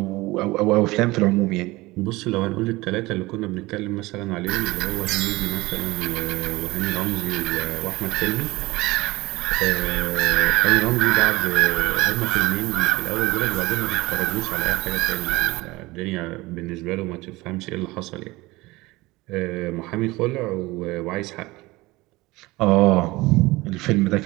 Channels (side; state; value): left; quieter; 20.8 dB